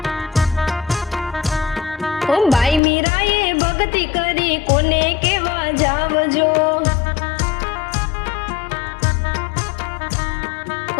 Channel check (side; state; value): right; drops out; at 2.8 s